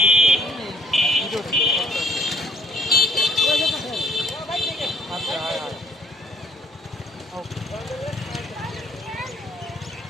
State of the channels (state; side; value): normal; both; correlation 0.61